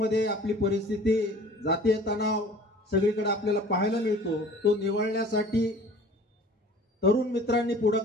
आपली परिस्थिती, जातीय तणाव सगळीकडे आपल्याला पाहायला मिळतो. तो निवळण्यासाठी तरुण मित्रांनी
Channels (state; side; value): normal; both; correlation 0.47